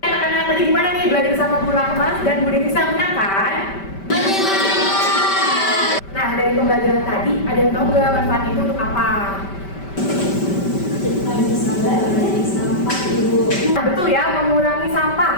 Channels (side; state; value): right; late; 5.1 ms